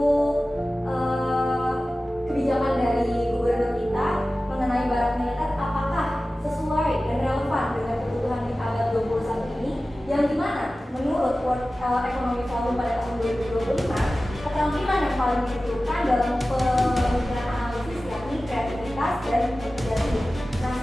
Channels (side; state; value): both; normal; correlation 0.96